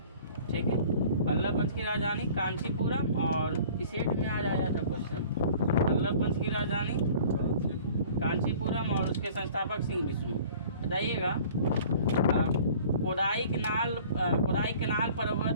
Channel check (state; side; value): inverted; both; correlation -0.49